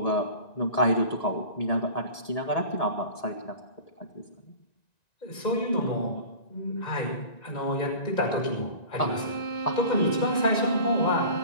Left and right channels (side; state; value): right; late; 1.9 ms